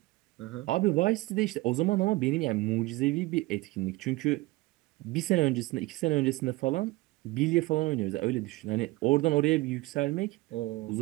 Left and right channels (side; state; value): left; quieter; 20.7 dB